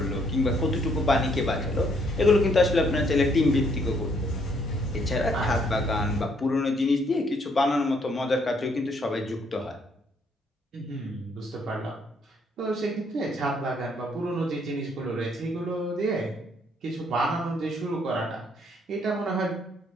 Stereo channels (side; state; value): both; normal; correlation 0.69